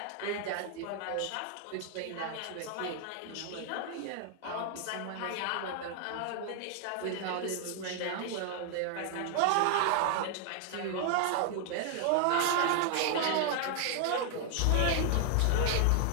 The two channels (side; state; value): both; different; correlation 0.00